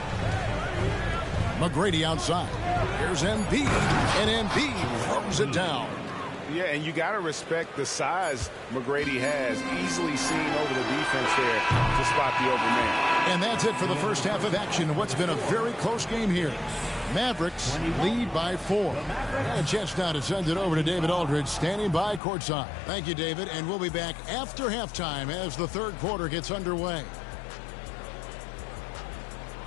McGrady outside. Here's Embiid, and Embiid throws it down. Yeah, and you got to respect the size McGrady has. Easily seen over the defense there to spot the open man. And that's it for the first half of action in what's been a very close game here. Mavericks lead by 4. And a chance now to send it over to David Aldridge, standing by courtside. Thank you, David, and we'll be back after halftime as the third quarter gets underway.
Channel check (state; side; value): drops out; right; at 22.2 s